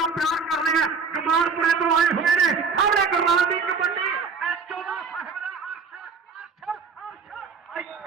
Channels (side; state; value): left; quieter; 5.1 dB